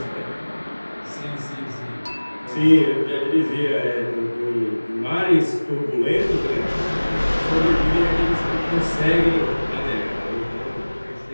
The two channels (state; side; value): inverted; both; correlation -1.00